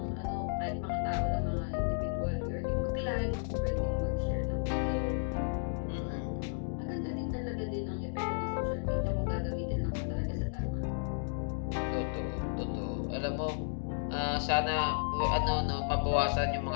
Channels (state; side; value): silent; right; digital silence